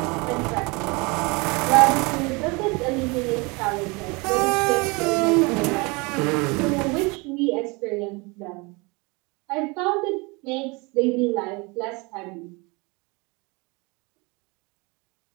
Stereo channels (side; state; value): left; quieter; 27.4 dB